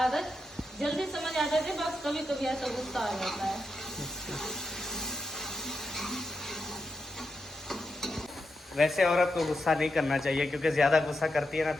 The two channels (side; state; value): both; normal; correlation 0.86